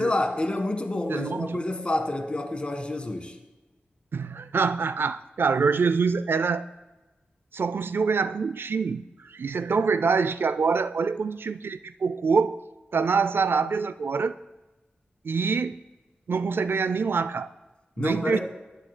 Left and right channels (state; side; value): quieter; left; 3.7 dB